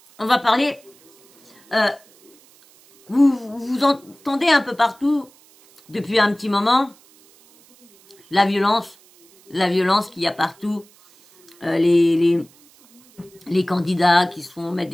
on va parler... vous entendez un peu partout, depuis un petit moment, la violence qu'il y a partout, les candidats qui se font mettre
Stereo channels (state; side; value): noise; right; hiss, 28 dB below the sound